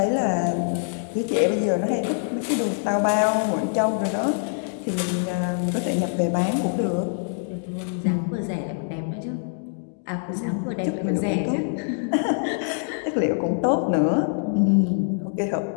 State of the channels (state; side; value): silent; right; digital silence